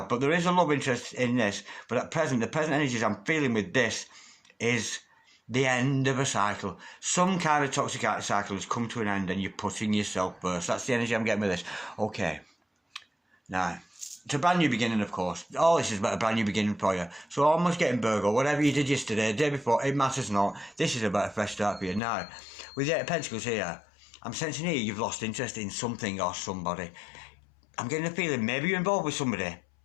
but there is a love interest in this. But at present, the present energies I'm feeling with this is the end of a cycle. Some kind of toxic cycle has come to an end and you're putting yourself first. That's the energy I'm getting with this. Okay. Now, it's a brand new beginning, of course. All this is about a brand new beginning for you. So almost getting Virgo, whatever you did yesterday, the day before, it matters not. This is about a fresh start for you. Now, with the 8 of Pentacles here, I'm sensing here you've lost interest in something or somebody. I'm getting a feeling maybe you're involved with somebody,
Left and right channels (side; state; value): right; drops out; at 22.0 s